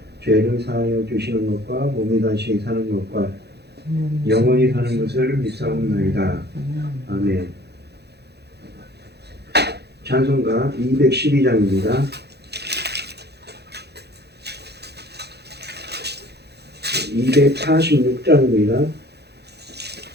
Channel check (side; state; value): left; late; 0.48 ms